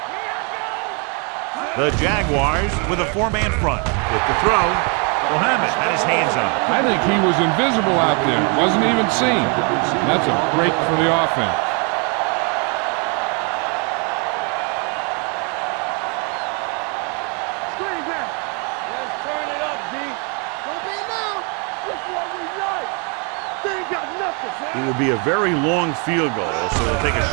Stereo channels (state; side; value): quieter; left; 35.6 dB